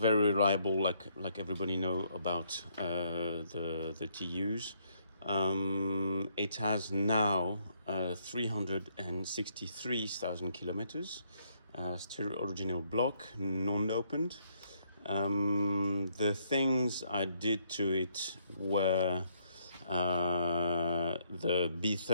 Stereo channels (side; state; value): both; inverted; correlation -0.71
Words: reliable, like everybody know about the TUs. It has now 363,000 kilometers, still original block, non-opened. The things I did to it were the